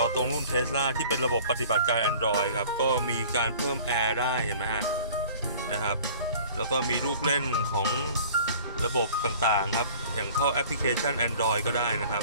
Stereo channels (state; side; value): inverted; both; correlation -0.48